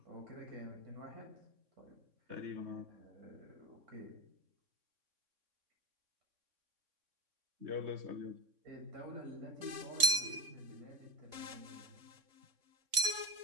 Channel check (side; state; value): left; late; 3.8 ms